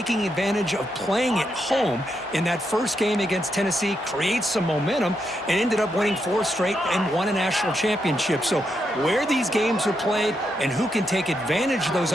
advantage of playing at home in that first game against Tennessee, create some momentum, and ended up winning 4 straight and won a national championship. So where these games are played and who can take advantage of those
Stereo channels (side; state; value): both; normal; correlation 0.82